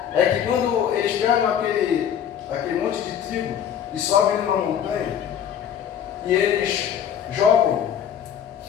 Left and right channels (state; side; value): quieter; right; 9.0 dB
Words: é que quando eles pegam aquele monte de trigo e sobem numa montanha e eles jogam